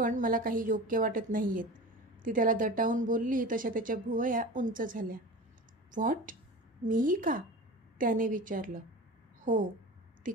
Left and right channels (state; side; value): normal; both; correlation 0.33